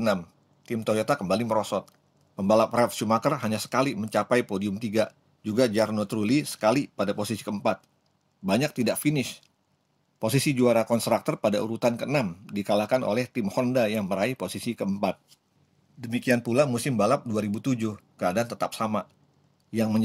Tim Toyota kembali merosot. Pembalap Ralf Schumacher hanya sekali mencapai podium 3, juga Jarno Trulli sekali pada posisi keempat. Banyak tidak finish. Posisi juara konstruktor pada urutan ke-6 dikalahkan oleh tim Honda yang meraih posisi keempat. Demikian pula musim balap 2007, keadaan tetap sama. Yang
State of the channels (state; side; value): identical; both; correlation 1.00